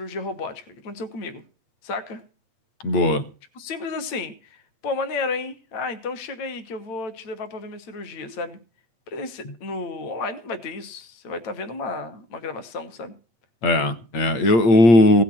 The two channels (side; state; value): right; late; 8.9 ms